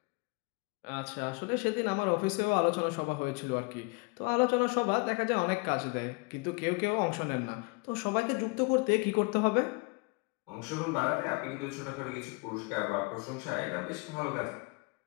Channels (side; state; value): right; quieter; 29.5 dB